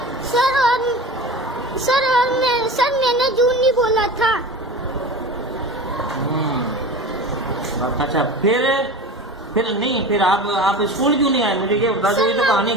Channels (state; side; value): normal; both; correlation 0.32